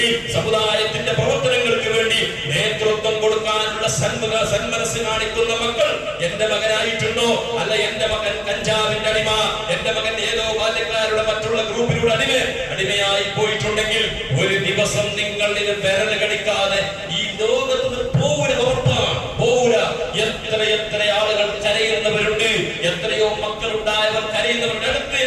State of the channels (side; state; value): both; identical; correlation 1.00